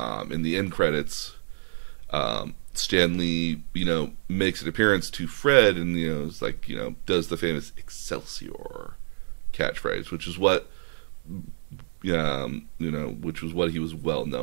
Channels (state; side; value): silent; left; digital silence